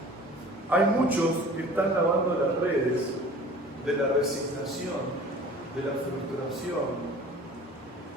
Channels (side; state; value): both; normal; correlation 0.45